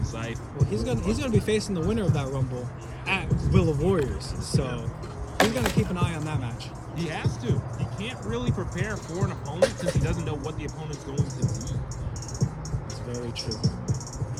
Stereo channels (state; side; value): identical; both; correlation 1.00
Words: Scythe. Well, he's gonna be facing the winner of that Rumble at Will of Warriors. So he's gonna keep an eye on that match. He has to. He can't really prepare for an opponent since he doesn't know what the opponent's going to be. It's very true.